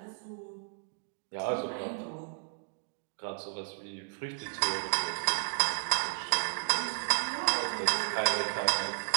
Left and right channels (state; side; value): silent; left; digital silence